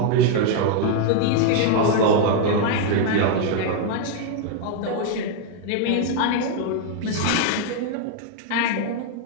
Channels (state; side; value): different; both; correlation 0.00